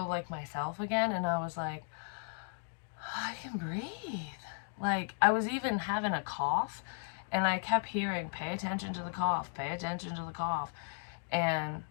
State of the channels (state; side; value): silent; right; 54 dB below the other